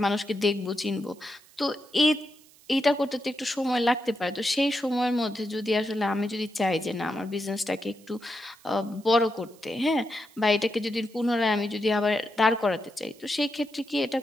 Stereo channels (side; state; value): right; noise; hiss, 26 dB below the sound